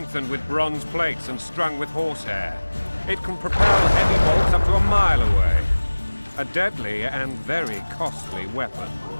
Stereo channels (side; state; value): both; inverted; correlation -1.00